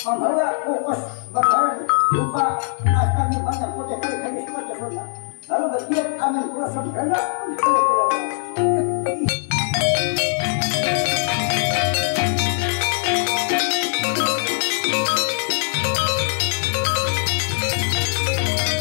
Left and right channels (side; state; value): right; silent; 65 dB below the other